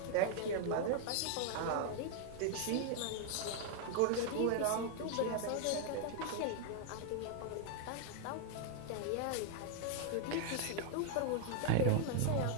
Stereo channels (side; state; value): both; different; correlation 0.00